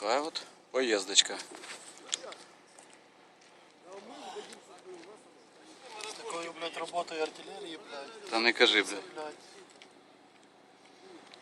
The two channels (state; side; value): identical; both; correlation 1.00